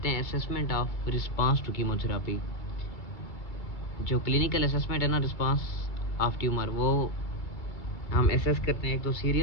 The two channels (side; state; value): right; late; 2.3 ms